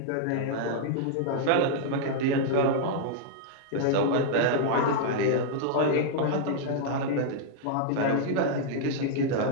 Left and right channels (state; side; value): different; both; correlation -0.01